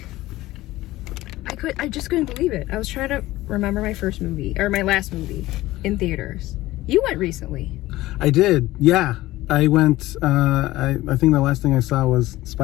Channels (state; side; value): quieter; right; 17.3 dB